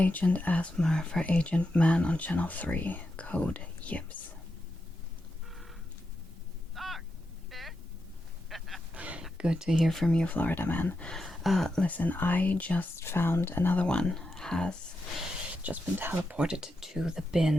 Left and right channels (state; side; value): normal; both; correlation 0.86